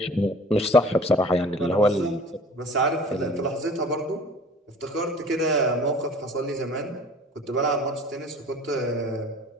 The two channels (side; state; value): both; normal; correlation 0.46